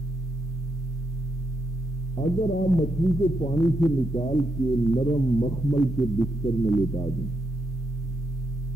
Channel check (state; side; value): normal; both; correlation 0.80